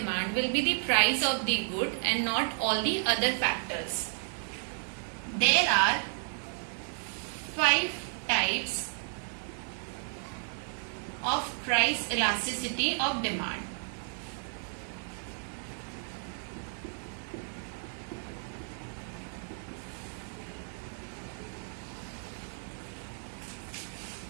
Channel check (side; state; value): left; silent; 56 dB below the other